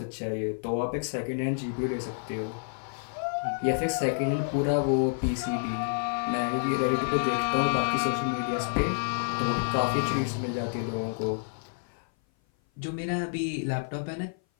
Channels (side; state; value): right; silent; 56 dB below the other